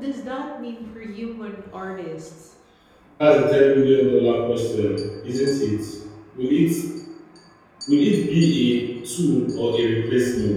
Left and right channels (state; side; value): identical; both; correlation 1.00